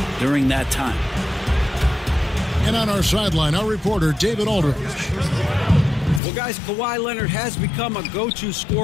during that time. And on our sideline, our reporter, David Aldridge. Well, guys, Kawhi Leonard has become a go-to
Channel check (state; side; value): drops out; right; at 6.2 s